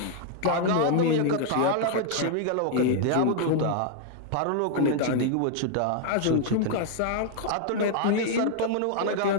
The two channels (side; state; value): both; different; correlation 0.00